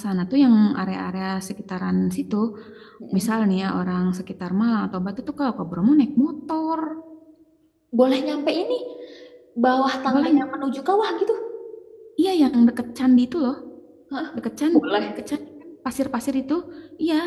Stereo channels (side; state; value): both; identical; correlation 1.00